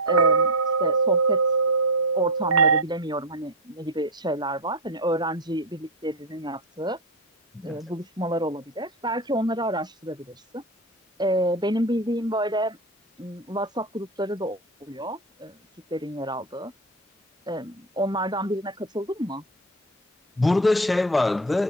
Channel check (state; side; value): normal; both; correlation 0.14